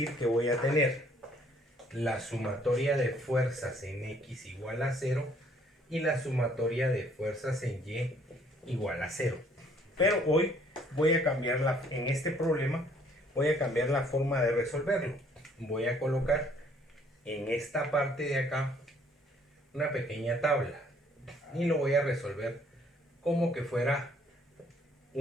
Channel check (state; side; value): normal; both; correlation 0.62